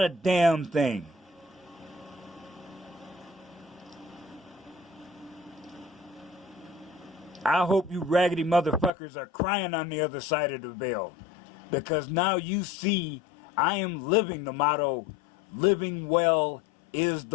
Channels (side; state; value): right; drops out; at 8.9 s